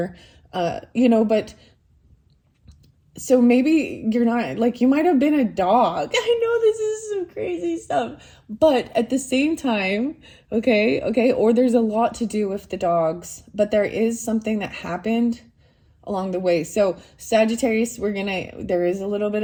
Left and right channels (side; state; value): both; identical; correlation 1.00